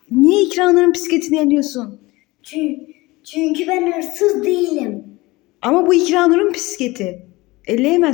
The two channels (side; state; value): right; quieter; 21.3 dB